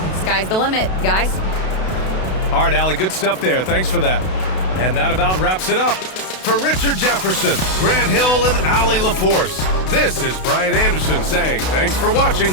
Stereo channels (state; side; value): late; right; 32 ms